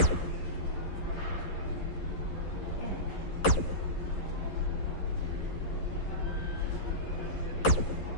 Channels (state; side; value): late; right; 11 ms